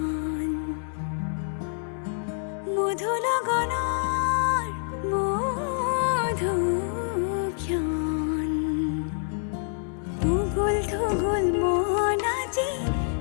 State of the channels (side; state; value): right; silent; 60 dB below the other